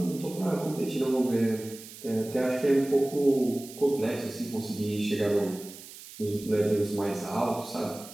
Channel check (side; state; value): right; noise; hiss, 16 dB below the sound